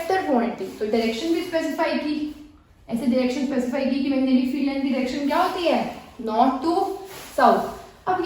quantity, तो डायरेक्शन भी स्पेसिफाई की, ऐसे डायरेक्शन स्पेसिफाई की कि मैग्नेटिक फील्ड लाइन की डायरेक्शन क्या होती है, नॉर्थ टू साउथ। अब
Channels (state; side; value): identical; both; correlation 1.00